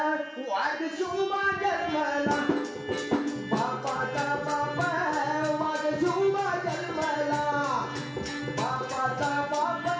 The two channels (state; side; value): identical; both; correlation 1.00